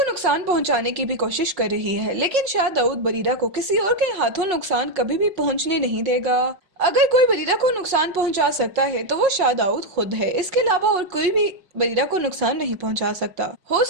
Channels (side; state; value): left; late; 5.6 ms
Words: नुकसान पहुंचाने की भी कोशिश कर रही है, लेकिन शाह दाऊद बरीरा को किसी और के हाथों नुकसान कभी भी पहुंचने नहीं देगा। अगर कोई बरीरा को नुकसान पहुंचा सकता है तो वो शाह दाऊद खुद है। इसके अलावा और कोई भी बरीरा को नुकसान नहीं पहुंचा सकता। हो